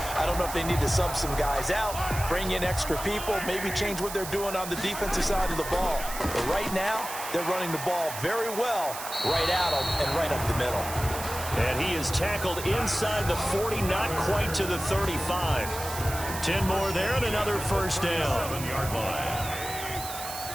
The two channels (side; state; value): right; noise; hiss, 9 dB below the sound